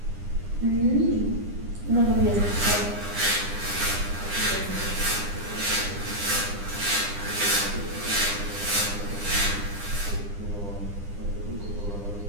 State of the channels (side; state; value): left; late; 9.9 ms